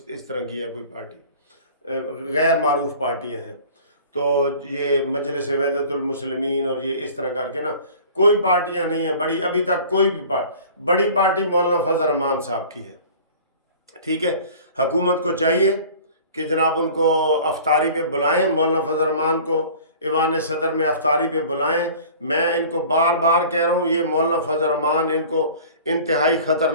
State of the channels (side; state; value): both; inverted; correlation -0.45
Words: اس طرح کی ہے کوئی پارٹی، غیر معروف پارٹیاں ہیں. تو یہ مجلس وحدت المسلمین اور یہ اس طرح کر کے نا کوئی پارٹیاں نہیں ہیں بڑی. ابھی تک کوئی بھی بڑی پارٹی مولانا فضل الرحمان صاحب کی ہے. ٹھیک ہے. حکومت کو چاہیے کہ جناب ان کو افطاری پہ بلائیں، مولانا فضل الرحمان کو ایوان صدر میں افطاری پہ بلائیں. میں ان کو بار بار کہہ رہا ہوں، یہ مولانا فضل الرحمان ان کو انتہائی